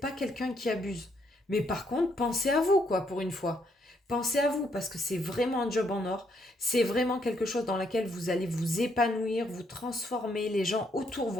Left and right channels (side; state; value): both; normal; correlation 0.73